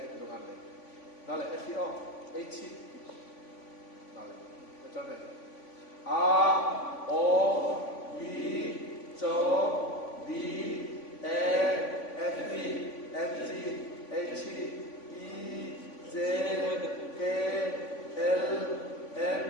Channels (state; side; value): late; right; 3.5 ms